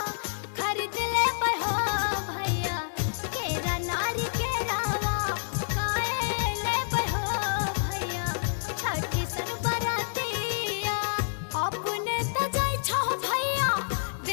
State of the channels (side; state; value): right; silent; digital silence